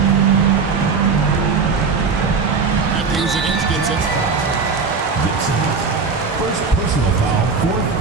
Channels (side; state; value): left; quieter; 4.9 dB